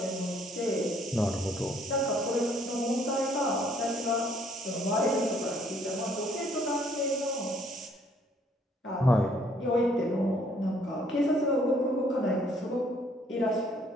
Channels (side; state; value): both; normal; correlation 0.64